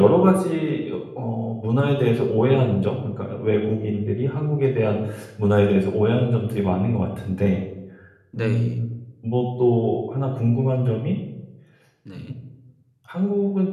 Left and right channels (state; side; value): identical; both; correlation 1.00